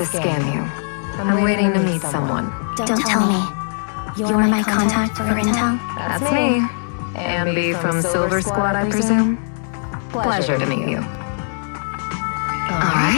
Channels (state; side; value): silent; right; digital silence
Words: scam you. I'm waiting to meet someone. Don't tell me. You're my contact for intel? That's me. Ambi from Silver Squad, I presume? Pleasure to meet you.